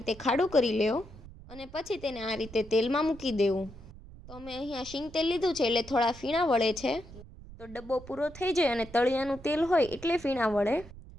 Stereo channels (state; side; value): noise; right; rumble, 17 dB below the sound